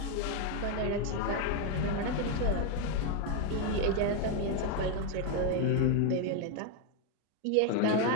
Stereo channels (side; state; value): both; different; correlation 0.01